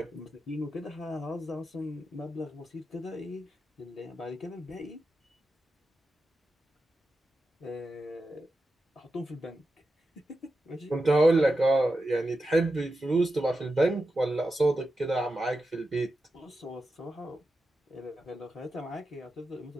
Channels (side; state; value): both; normal; correlation 0.90